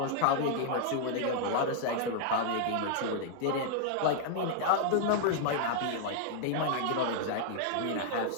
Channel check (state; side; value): different; both; correlation -0.01